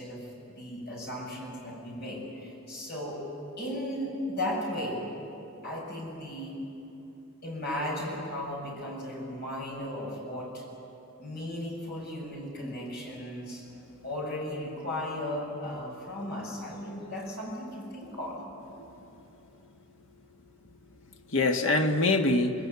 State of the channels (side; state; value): both; normal; correlation 0.25